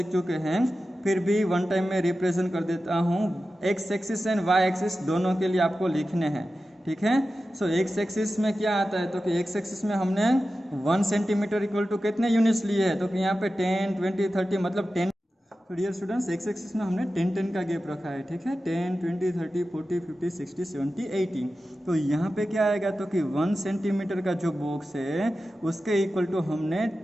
चुके हैं, फिर भी वन टाइम में रिप्रेजेंट कर देता हूँ। X axis and Y axis दोनों के लिए आपको लिखने हैं, ठीक है। सो एक्स एक्सिस में क्या आता है तो कि एक्स एक्सिस में हमने 1 सेंटीमीटर = कितने यूनिट्स लिए हैं तो कि यहाँ पे 10 20 30 मतलब 10। तो डियर स्टूडेंट्स एक्स एक्सिस में हमने 10 10 का गैप रखा है, ठीक है। 10 20 30 40 50 60 70 80। तो यहाँ पे क्या आएगा तो कि 1 सेंटीमीटर का जो बॉक्स है उसके इक्वल टू हमने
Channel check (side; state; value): both; normal; correlation 0.93